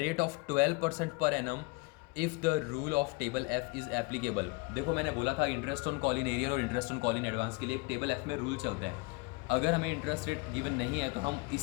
of 12% per annum if the rule of table F is applicable. देखो मैंने बोला था interest on call in arrear और interest on call in advance के लिए एक टेबल एफ में rule चलते हैं। अगर हमें इंटरेस्ट रेट गिवन नहीं है तो हम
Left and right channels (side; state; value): right; quieter; 25.6 dB